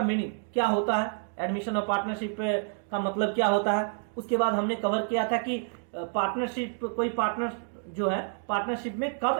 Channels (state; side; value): silent; left; 59 dB below the other